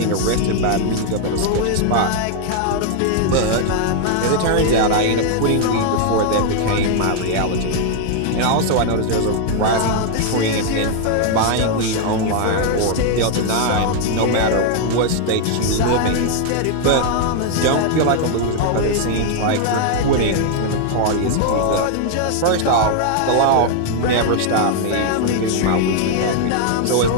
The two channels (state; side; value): different; both; correlation 0.00